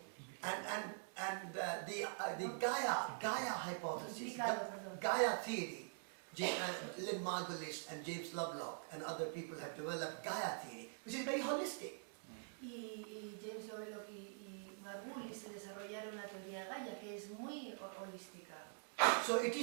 And the Gaia hypothesis, Perdón. Gaia theory, Lynn Margulis and James Lovelock and other people have developed Gaia theory, which is very holistic. Y James Lovelock y Margulis se desarrollaron la teoría Gaia, que es muy holística. So it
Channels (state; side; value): silent; left; digital silence